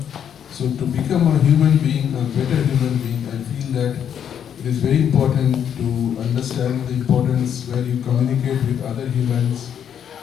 So to become a human being, a better human being, I feel that it is very important to understand the importance where you communicate with other humans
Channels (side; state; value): right; quieter; 8.8 dB